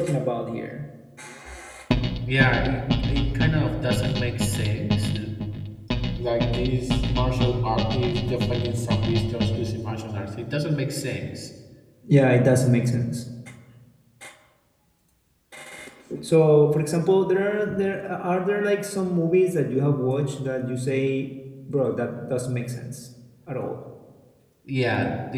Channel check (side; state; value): both; identical; correlation 1.00